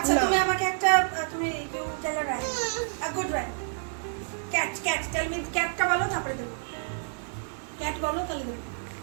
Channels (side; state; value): left; silent; digital silence